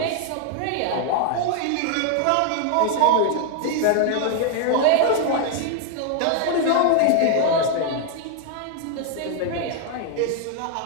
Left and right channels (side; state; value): both; different; correlation 0.00